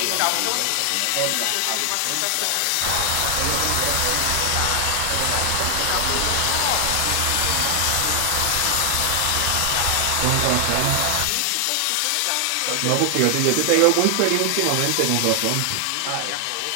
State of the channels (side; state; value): both; different; correlation 0.00